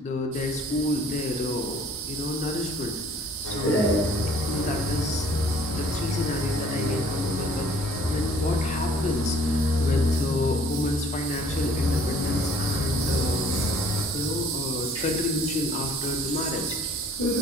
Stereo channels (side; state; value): both; normal; correlation 0.56